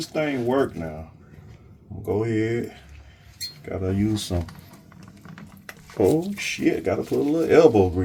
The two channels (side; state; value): both; identical; correlation 1.00